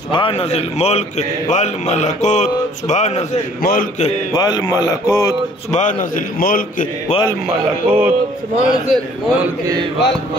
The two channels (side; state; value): both; normal; correlation 0.57